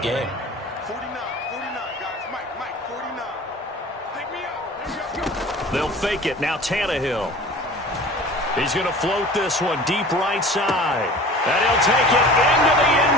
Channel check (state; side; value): normal; both; correlation 0.42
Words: game. 49, guys. Mike, 49. Take me out. They'll fake it. Now Tannehill. He's going to float this one deep right side. And he'll take it into the